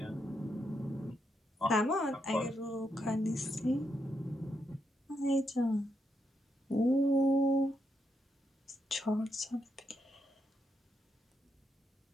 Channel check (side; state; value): both; normal; correlation 0.81